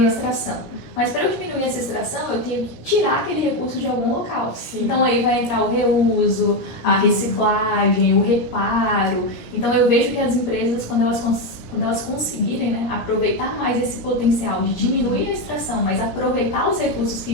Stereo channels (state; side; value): late; right; 17 ms